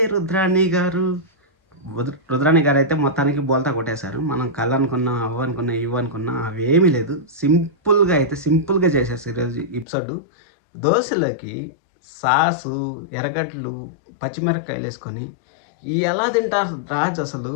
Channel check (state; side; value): drops out; right; at 9.9 s